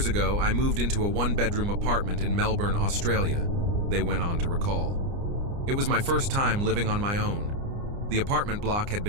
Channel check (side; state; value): left; late; 29 ms